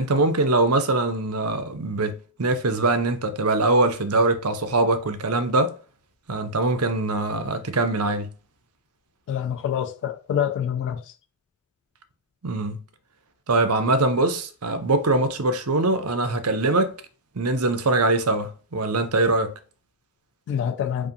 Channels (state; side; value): normal; both; correlation -0.16